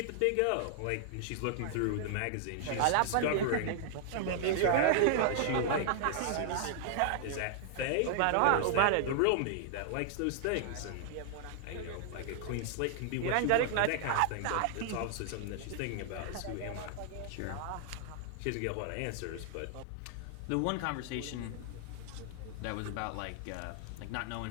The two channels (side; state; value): both; different; correlation -0.01